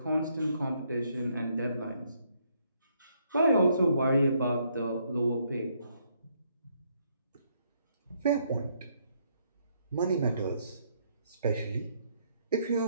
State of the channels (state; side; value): inverted; both; correlation -0.71